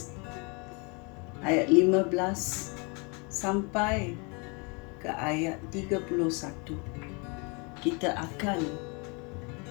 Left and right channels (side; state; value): right; quieter; 31.7 dB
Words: ayat 15 sampai ke ayat 31, kita akan